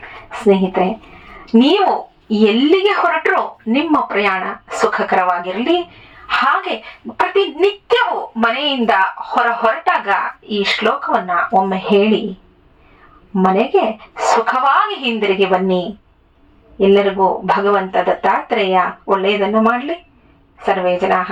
ಸ್ನೇಹಿತರೆ, ನೀವು ಎಲ್ಲಿಗೆ ಹೊರಟರೂ ನಿಮ್ಮ ಪ್ರಯಾಣ ಸುಖಕರವಾಗಿರಲಿ. ಹಾಗೆ ಪ್ರತಿನಿತ್ಯವೂ ಮನೆಯಿಂದ ಹೊರಟಾಗ ಈ ಶ್ಲೋಕವನ್ನ ಒಮ್ಮೆ ಹೇಳಿ ಮನೆಗೆ ಸುಖವಾಗಿ ಹಿಂದಿರುಗಿ ಬನ್ನಿ. ಎಲ್ಲರಿಗೂ ಭಗವಂತ ದತ್ತಾತ್ರೇಯ ಒಳ್ಳೆಯದನ್ನು ಮಾಡಲಿ. ಸರ್ವೇ ಜನಾಃ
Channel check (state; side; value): identical; both; correlation 1.00